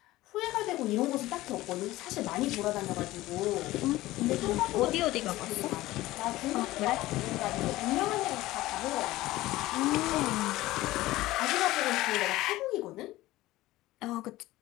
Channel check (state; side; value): quieter; right; 17.3 dB